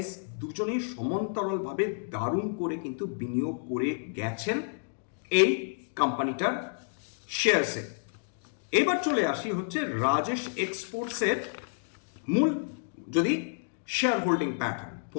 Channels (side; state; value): right; silent; digital silence